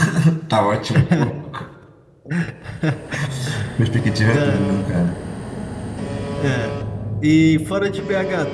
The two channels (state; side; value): identical; both; correlation 1.00